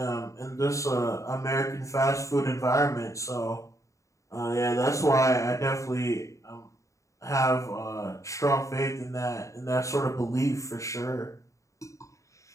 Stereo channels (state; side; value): late; right; 0.15 ms